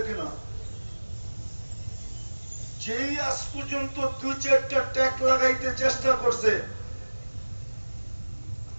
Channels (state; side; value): inverted; both; correlation -1.00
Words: না। যেই আজ পর্যন্ত 2-4টা ট্যাগ লাগাইতে চেষ্টা করছে,